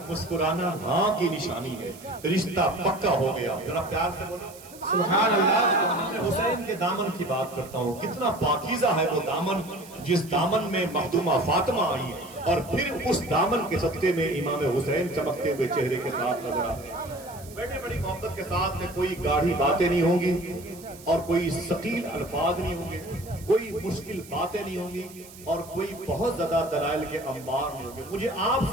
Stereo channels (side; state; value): right; noise; hiss, 19 dB below the sound